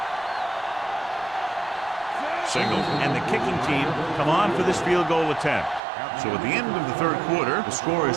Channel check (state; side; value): drops out; left; at 5.8 s